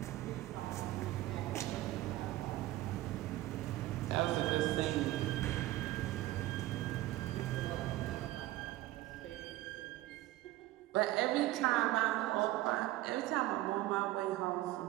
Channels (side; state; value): left; quieter; 16.4 dB